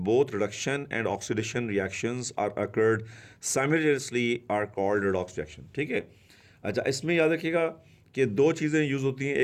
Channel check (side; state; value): both; identical; correlation 1.00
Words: both reduction and oxidation reactions are occurred simultaneously are called redox reaction. ठीक है. अच्छा, इसमें याद रखिएगा कि दो चीज़ें यूज़ होती हैं,